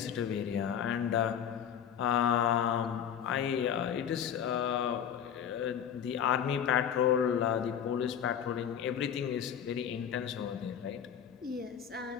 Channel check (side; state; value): right; quieter; 8.7 dB